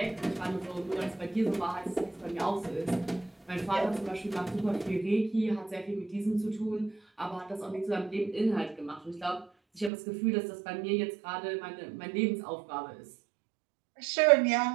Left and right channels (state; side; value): drops out; left; at 9.9 s